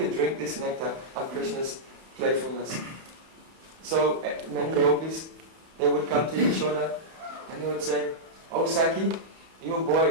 drink this nectar of Krishna's playfulness. So many gopis, they would come to Yashoda and they would say, "Oh Sakhi, your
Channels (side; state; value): left; late; 31 ms